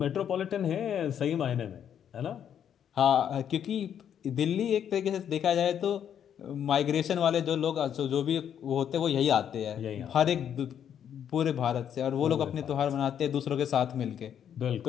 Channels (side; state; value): right; quieter; 9.1 dB